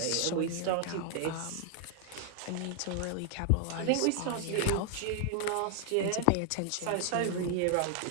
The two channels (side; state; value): both; different; correlation 0.00